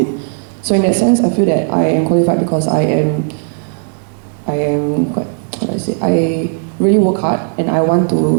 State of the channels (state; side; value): silent; left; digital silence